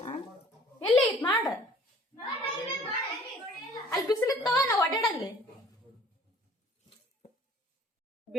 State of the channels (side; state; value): both; normal; correlation 0.52